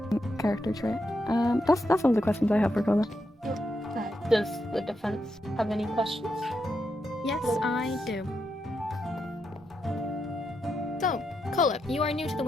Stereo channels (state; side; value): normal; both; correlation 0.83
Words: character trait. That's all the questions I have for Cola. Does the defense have any questions? Yes, I do. So, Cola, you are new to the